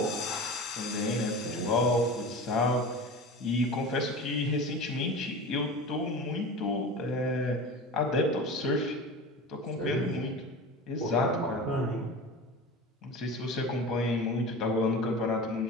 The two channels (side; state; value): both; normal; correlation 0.32